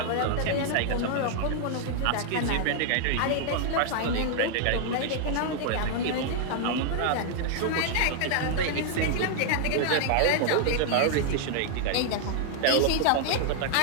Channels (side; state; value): both; different; correlation 0.00